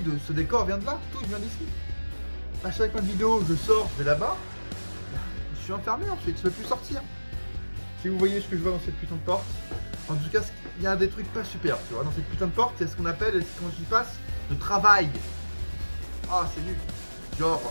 ce décor vient de là, tout vient d'ici. À chaque fin de vidéo, je sors, je vais là-bas. Je suis enfermé ensuite, je ne peux plus sortir. Si vous voyez ce que je vois dans cette putain de porte, en tout cas, il y a des trucs pas super, tu vois. Dans cette putain de porte, il y a ce qu'on appelle, quand j'y passe, le travail. Ah, c'est nul. Genre,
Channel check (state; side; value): inverted; both; correlation -1.00